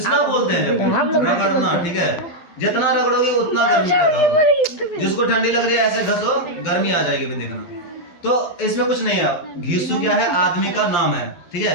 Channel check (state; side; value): late; right; 12 ms